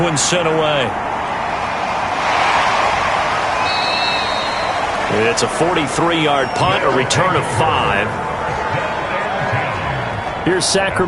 one's sent away. It's a 43-yard punt, a return of 5. Here's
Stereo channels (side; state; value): both; identical; correlation 1.00